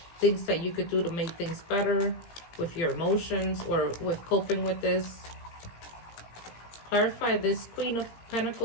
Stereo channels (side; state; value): right; late; 17 ms